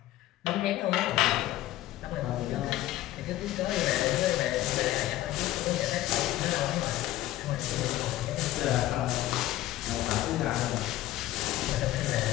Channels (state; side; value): quieter; right; 15.0 dB